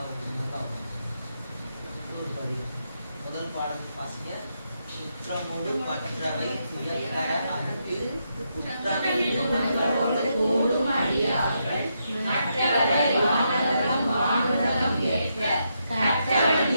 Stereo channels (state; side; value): inverted; both; correlation -0.81